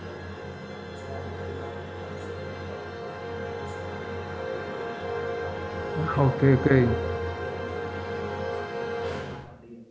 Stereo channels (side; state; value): both; identical; correlation 1.00